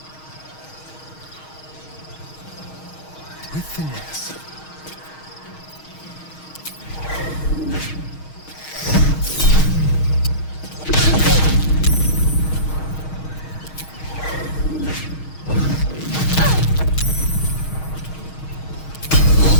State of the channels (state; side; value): late; right; 6.4 ms